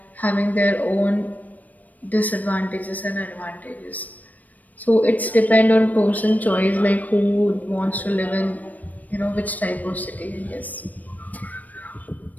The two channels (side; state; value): right; late; 0.078 ms